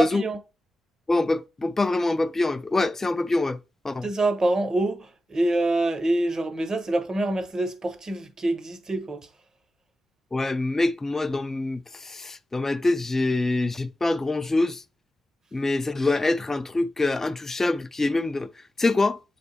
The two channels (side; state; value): both; normal; correlation 0.93